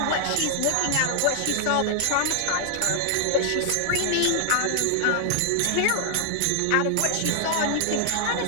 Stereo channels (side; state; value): both; different; correlation 0.00